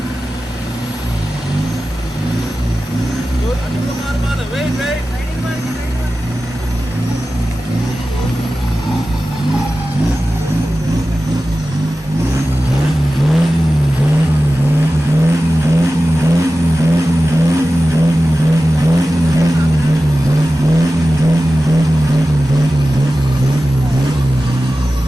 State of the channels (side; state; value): both; normal; correlation 0.94